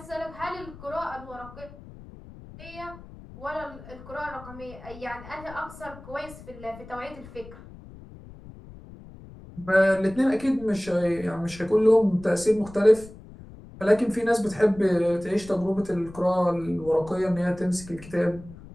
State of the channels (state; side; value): noise; left; rumble, 17 dB below the sound